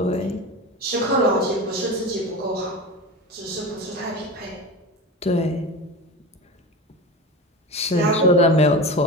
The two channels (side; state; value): both; normal; correlation 0.28